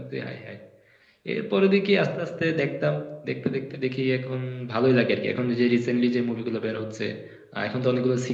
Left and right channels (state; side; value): identical; both; correlation 1.00